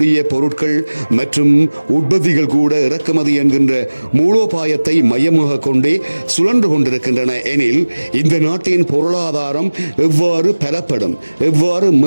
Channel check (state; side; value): inverted; both; correlation -1.00